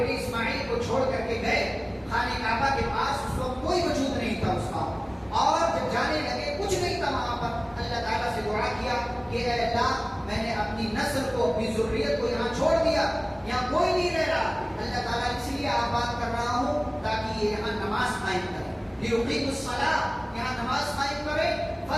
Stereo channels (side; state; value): both; identical; correlation 1.00